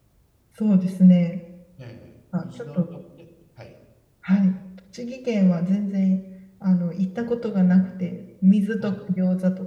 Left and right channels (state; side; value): identical; both; correlation 1.00